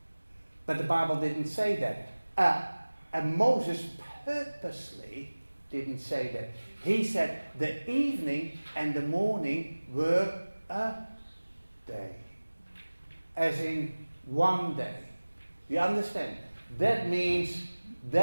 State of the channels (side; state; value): both; inverted; correlation -1.00